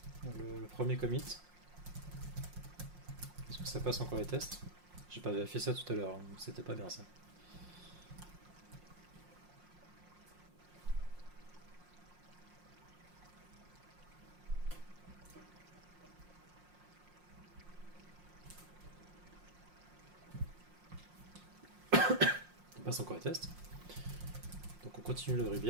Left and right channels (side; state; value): left; late; 5.6 ms